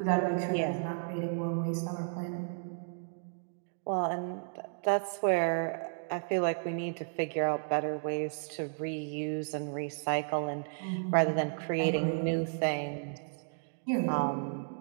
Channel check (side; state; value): left; silent; digital silence